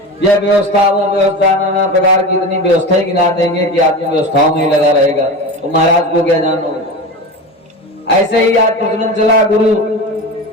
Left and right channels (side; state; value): both; normal; correlation 0.27